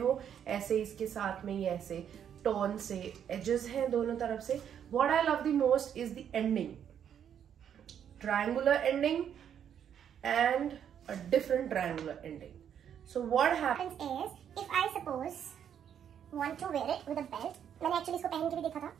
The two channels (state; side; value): quieter; left; 8.9 dB